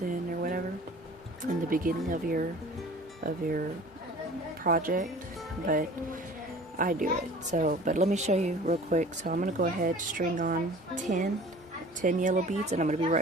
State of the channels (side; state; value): both; normal; correlation 0.45